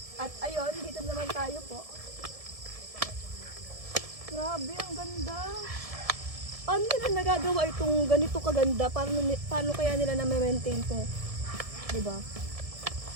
At ayun, dito naman tayo po. Grabe, ang ganda. Paano nila nagagawa itong ganito kaganda? Paano kaya nila na-maintain to? Diba?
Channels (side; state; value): left; late; 1.7 ms